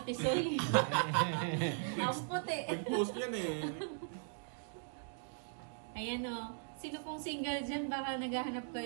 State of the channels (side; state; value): left; silent; digital silence